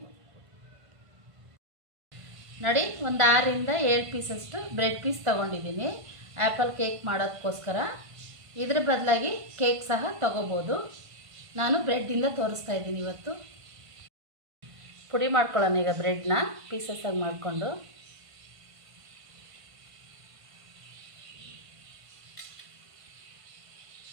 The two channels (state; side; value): late; left; 1.5 ms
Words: ನೋಡಿ, ಒಂದು 6ರಿಂದ 7 ಪೀಸಷ್ಟು ಬ್ರೆಡ್ ಪೀಸ್ ತೊಗೊಂಡಿದ್ದೀನಿ ಆ್ಯಪಲ್ ಕೇಕ್ ಮಾಡೋದಕ್ಕೋಸ್ಕರ. ಇದ್ರ ಬದಲಾಗಿ ಕೇಕ್ ಸಹ ತೊಗೋಬೋದು. ನಾನು ಬ್ರೆಡ್ಡಿಂದ ತೋರಿಸ್ತಾ ಇದ್ದೀನಿ ಇವತ್ತು. ಪುಡಿ ಮಾಡ್ಕೊಳ್ಳೋಣ ಈಗ ಬ್ರೆಡ್ನ ಪೀಸಸ್ ಆಗಿ ಮಾಡಿಕೊಂಡು.